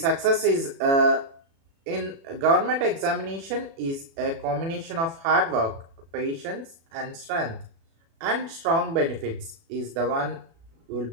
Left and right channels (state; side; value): late; left; 36 ms